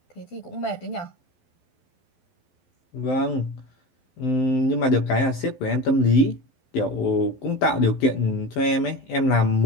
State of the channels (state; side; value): late; right; 12 ms